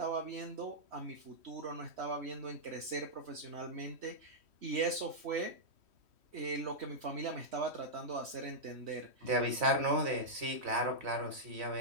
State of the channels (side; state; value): left; late; 3.1 ms